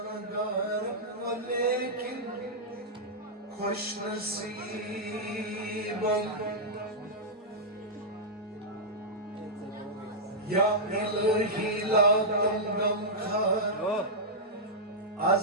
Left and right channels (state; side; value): normal; both; correlation -0.09